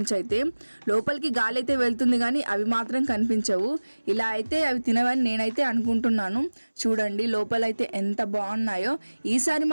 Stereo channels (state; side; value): inverted; both; correlation -1.00